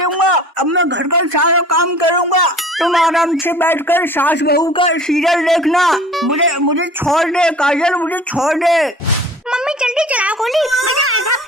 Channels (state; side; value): normal; both; correlation 0.45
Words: अब मैं घर का सारा काम करूंगा। तुम आराम से बैठकर सास बहू का सीरियल देखना। मुझे छोड़ दे काजल, मुझे छोड़ दे। मम्मी जल्दी चलाओ गोली, मजा आएगा।